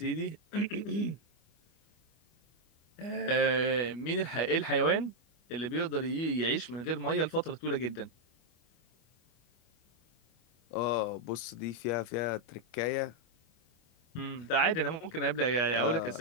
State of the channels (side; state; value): right; late; 25 ms